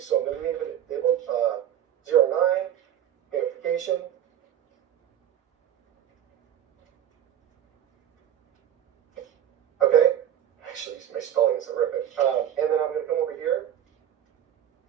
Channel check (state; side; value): quieter; left; 10.5 dB